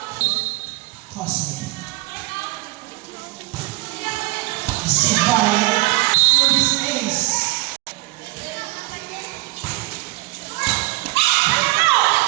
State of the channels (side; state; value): left; quieter; 21.0 dB